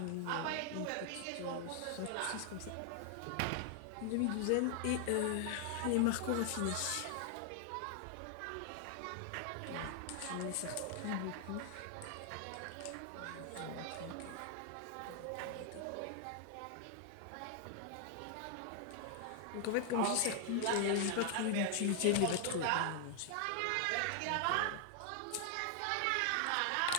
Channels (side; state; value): both; different; correlation 0.00